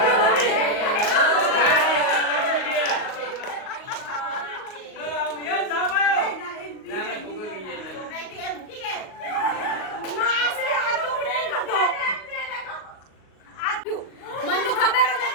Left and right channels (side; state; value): right; late; 38 ms